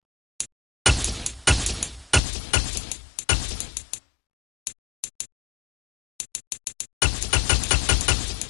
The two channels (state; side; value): drops out; right; at 2.2 s